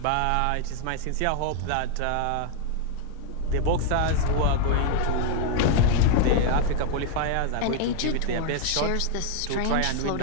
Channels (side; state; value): both; different; correlation 0.00